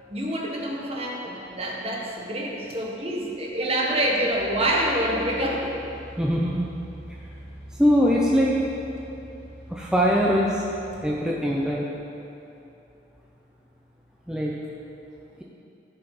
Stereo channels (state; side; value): normal; both; correlation 0.53